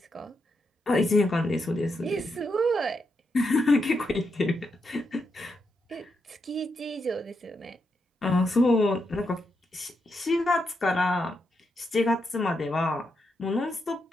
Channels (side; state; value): both; normal; correlation 0.83